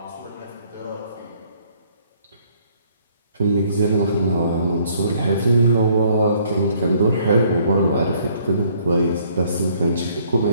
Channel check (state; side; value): inverted; both; correlation -0.63